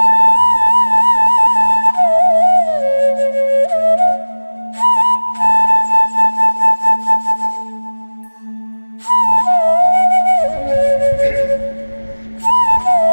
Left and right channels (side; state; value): both; inverted; correlation -1.00